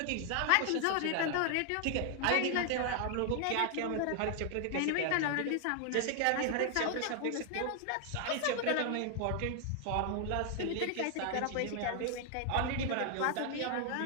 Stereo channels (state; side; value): different; both; correlation 0.00